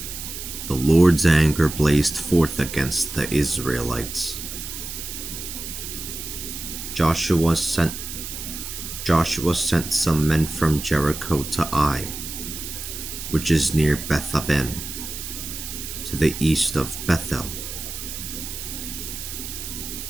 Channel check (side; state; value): right; noise; hiss, 8 dB below the sound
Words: The Lord's anger blazed forth against the Israelites. Joshua sent some men from Jericho to Ai, which is near Beth-aven, to the east of Bethel.